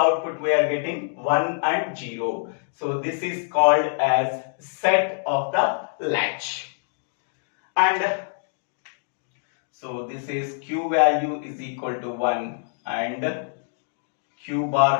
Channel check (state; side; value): silent; right; digital silence